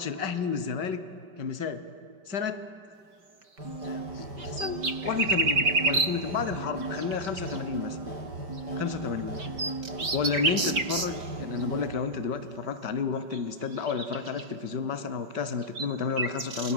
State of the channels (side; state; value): left; late; 5.2 ms